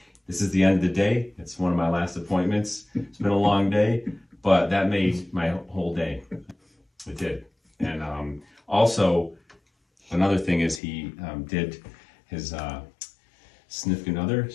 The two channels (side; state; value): right; drops out; at 10.8 s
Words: this is the end of the day. It's one of my last appointments. It's been a long day, but that made my whole day. It did. And also, another thing is he did his significant other,